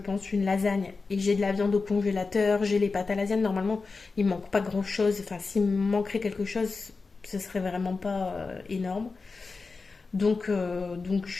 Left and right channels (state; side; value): quieter; right; 4.2 dB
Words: une lasagne et j'ai de la viande au congélateur, j'ai les pâtes à lasagne. Normalement il ne manque pas grand chose, enfin s'il me manquerait quelque chose ce serait vraiment pas énorme. Donc